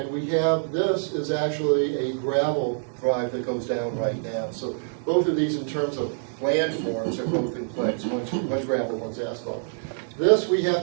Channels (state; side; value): silent; left; digital silence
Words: we have, this is actually a gravel drive that goes down right now. So both of these in terms of land forms are both in place, one's gravel, one's asphalt. This, we